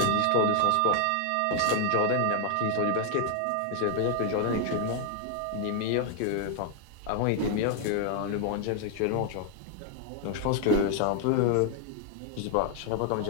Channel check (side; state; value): both; different; correlation 0.00